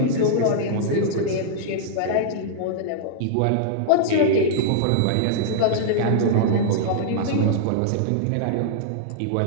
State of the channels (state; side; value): different; both; correlation -0.01